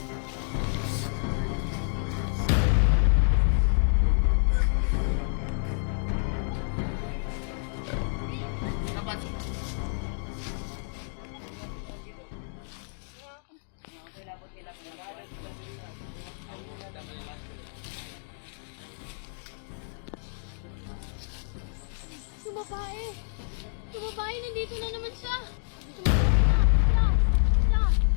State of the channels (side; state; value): right; silent; digital silence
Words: babae. Yung babae, nandito na naman siya.